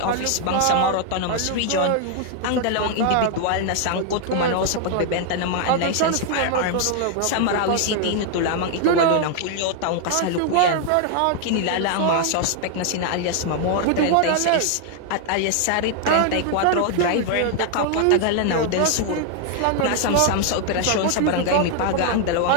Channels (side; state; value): both; different; correlation 0.00